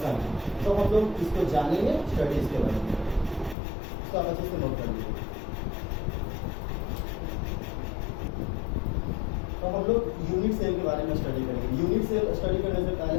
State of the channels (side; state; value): right; drops out; at 3.6 s